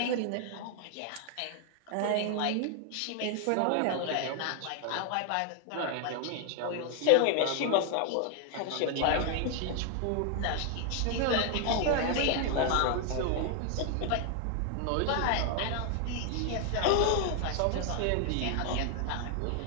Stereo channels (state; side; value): different; both; correlation 0.00